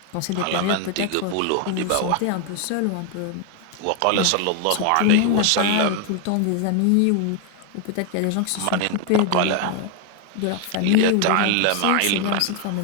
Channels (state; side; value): different; both; correlation 0.01